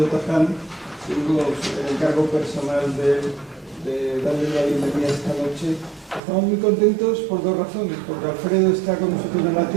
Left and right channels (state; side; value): drops out; left; at 6.2 s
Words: Taján, tengo el encargo personal de darle la bienvenida esta noche. Estamos muy contentos por dos razones, porque Alfredo está con nosotros en la